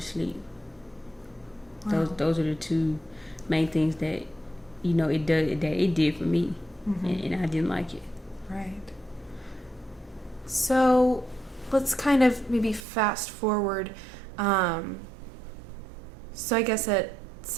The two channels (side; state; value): left; drops out; at 12.8 s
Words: sleep. Wow. Those are the two main things that it did for me, and I didn't like it. Right. So let's kind of maybe fast forward. So I guess at